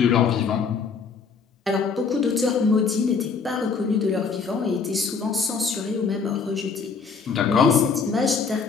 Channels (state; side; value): quieter; right; 5.3 dB